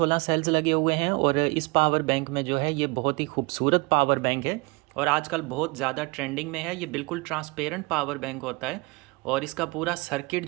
सेल्स लगे हुए हैं। और इस पावर बैंक में जो है ये बहुत ही खूबसूरत पावर बैंक है और आजकल बहुत ज़्यादा ट्रेंडिंग में है। ये बिल्कुल ट्रांसपेरेंट पावर बैंक होता है और इसका पूरा सर्किट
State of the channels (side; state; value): left; quieter; 26.9 dB